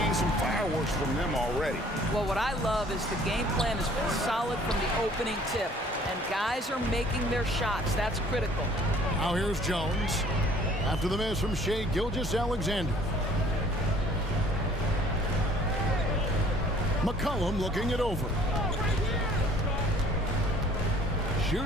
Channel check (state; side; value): normal; both; correlation 0.55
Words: some fireworks from them already. Well, what I love is the game plan has been solid from the opening tip. And guys are making their shots. That's critical. Now here's Jones. After the miss from Shai Gilgeous-Alexander. McCollum looking it over.